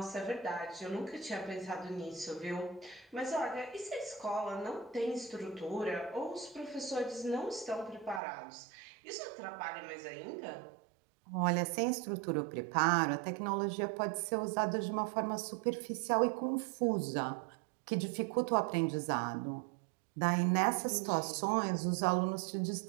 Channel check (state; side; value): drops out; left; at 8.2 s